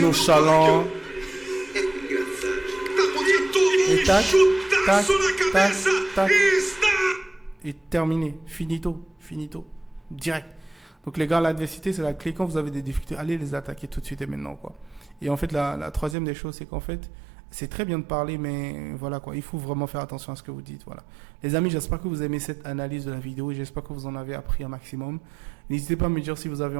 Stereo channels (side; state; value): left; drops out; at 16.2 s